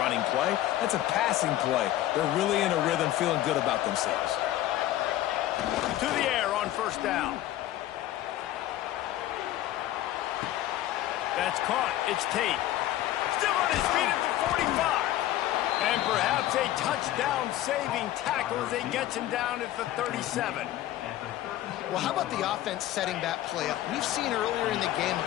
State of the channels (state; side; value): quieter; right; 14.0 dB